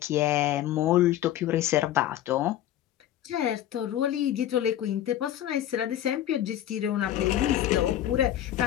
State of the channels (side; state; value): right; quieter; 12.1 dB